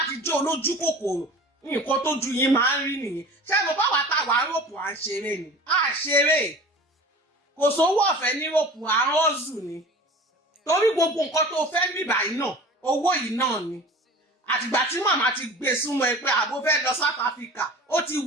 ti jó olójú kòkòrò nǹkan tó ju yín máa ń rí nìyẹn ṣé mo bá wà tá a wà rọ́pù à ń ṣeré ni à ṣeré kò sówó ọ̀fẹ́ ní rọ́pù à ń rọ́ọ̀zù ni torí gbogbo nǹkan tó fẹ́ mí báyìí náà owó yìí náà ni àtìgbà tí màmá ti gbé súnmọ́ ẹ pé àbó fẹ́ lọ South Africa ó ti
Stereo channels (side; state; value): both; normal; correlation 0.40